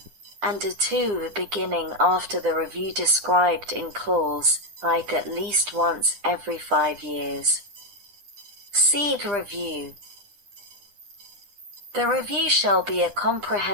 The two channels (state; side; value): late; left; 9.9 ms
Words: and 2. Beginning after the review described in clause at least once every 5 years. SEED review. The review shall be a